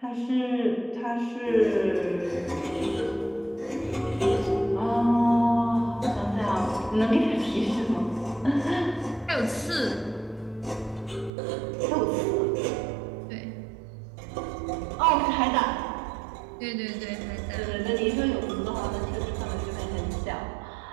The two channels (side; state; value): left; drops out; at 11.3 s